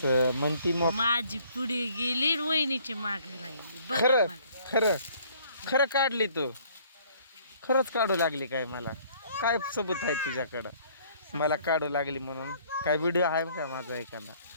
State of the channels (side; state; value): both; inverted; correlation -0.60